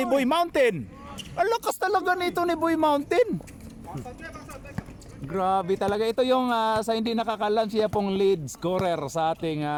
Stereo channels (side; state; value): both; identical; correlation 1.00